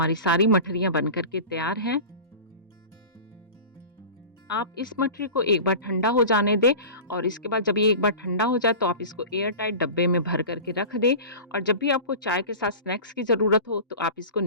सारी मठरियाँ बन कर के तैयार हैं। आप इस मठरी को एक बार ठंडा हो जाने दें और इसके बाद जब ये एक बार ठंडा हो जाए तो आप इसको एयर टाइट डब्बे में भर करके रख दें और जब भी आपको चाय के साथ स्नैक्स की ज़रूरत हो तो आप इसको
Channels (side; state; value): both; inverted; correlation -0.34